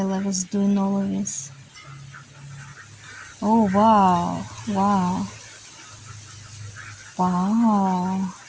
I was doing all of this. Oh wow, wow, wow.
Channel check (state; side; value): identical; both; correlation 1.00